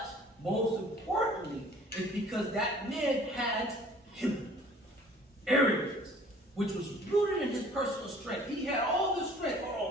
most importantly, is because that man had arrogance, which was rooted in his personal strength. He had all this strength.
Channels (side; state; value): both; normal; correlation 0.52